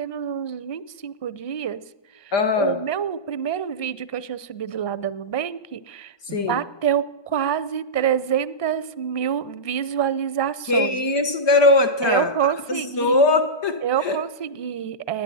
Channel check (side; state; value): right; late; 1.2 ms